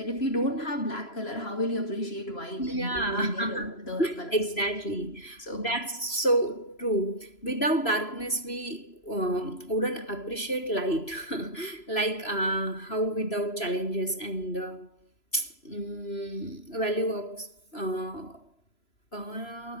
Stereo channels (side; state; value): right; late; 3.0 ms